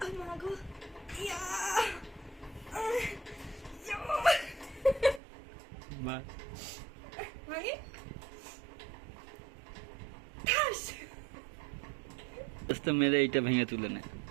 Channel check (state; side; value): drops out; left; at 5.2 s